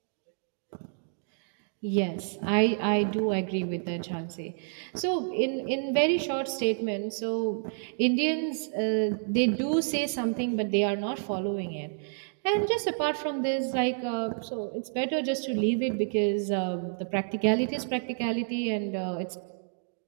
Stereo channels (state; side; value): silent; left; digital silence